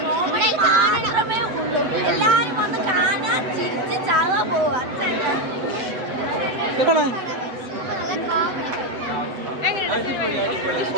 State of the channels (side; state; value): left; late; 7.9 ms